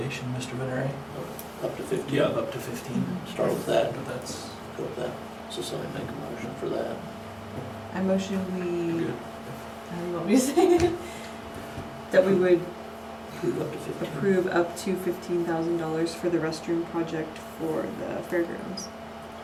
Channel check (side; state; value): both; identical; correlation 1.00